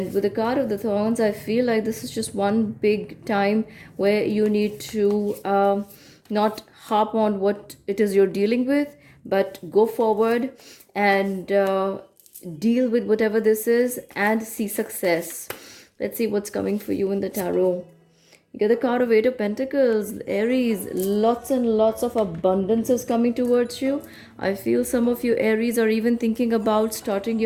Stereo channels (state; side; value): identical; both; correlation 1.00